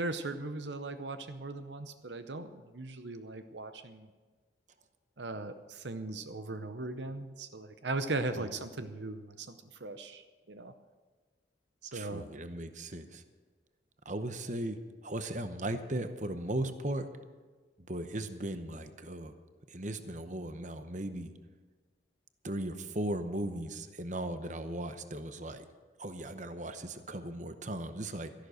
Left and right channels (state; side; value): normal; both; correlation 0.48